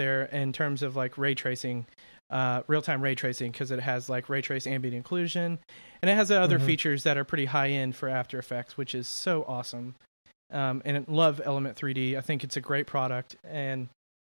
in terms of like ray tracing, real-time ray tracing, because it has like ray trace ambient occlusion, and it has other features that are pretty high-end for After Effects, which is so awesome. And I love Element 3D. I think it's a great product. And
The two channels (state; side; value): inverted; both; correlation -1.00